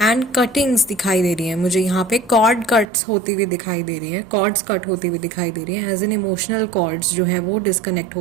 एंड कटिंग्स दिखाई दे रही हैं मुझे। यहाँ पे कॉर्ड कट्स होती हुई दिखाई दे रही हैं, कॉर्ड्स कट होती हुई दिखाई दे रही हैं, एज इन इमोशनल कॉर्ड्स जो है वो डिस्कनेक्ट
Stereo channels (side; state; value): left; drops out; at 2.9 s